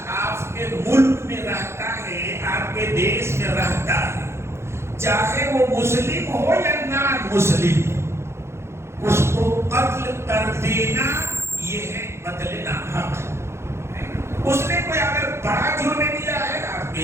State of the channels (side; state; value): left; late; 0.13 ms